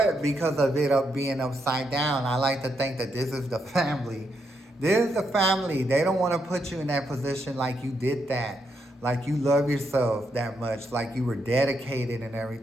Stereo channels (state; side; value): normal; both; correlation 0.80